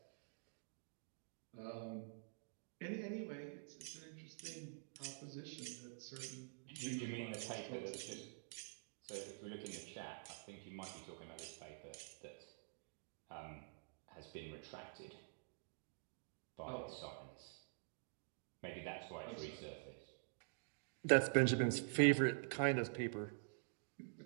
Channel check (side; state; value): left; silent; digital silence